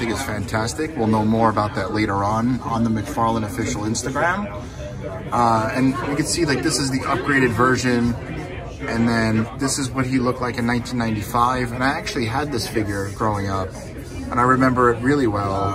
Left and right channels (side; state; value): both; identical; correlation 1.00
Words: is fantastic. We'll know more about that later on the McFarlane official Instagram. And you can see, like, this is the upgraded version. And then this is what he looked like in 1995. And I actually had this figure growing up, and I remember it really well.